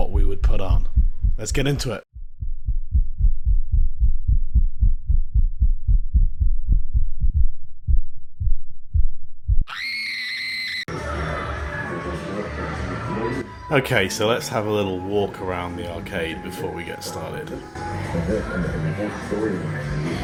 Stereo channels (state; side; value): identical; both; correlation 1.00